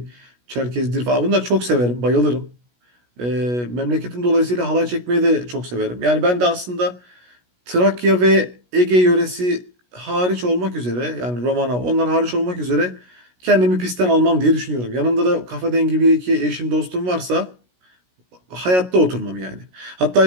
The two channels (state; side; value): late; left; 16 ms